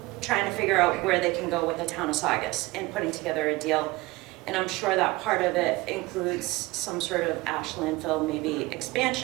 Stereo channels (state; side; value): quieter; left; 21.4 dB